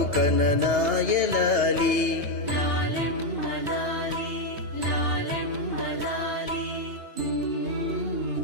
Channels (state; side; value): late; left; 2.9 ms